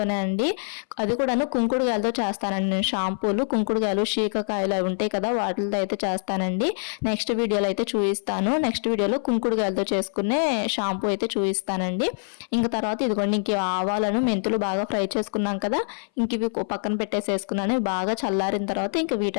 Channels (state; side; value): silent; right; 59 dB below the other